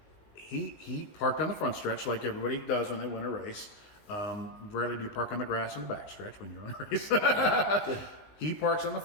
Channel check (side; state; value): right; late; 19 ms